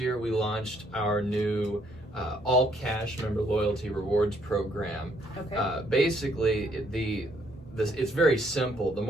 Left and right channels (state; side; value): normal; both; correlation 0.68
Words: we launched our new all cash member loyalty rewards program. Okay. Basically, it's very simple. The